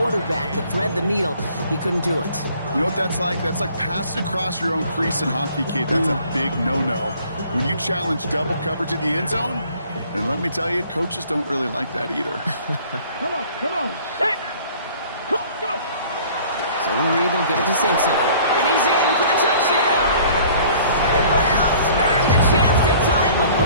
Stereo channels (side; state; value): both; inverted; correlation -0.53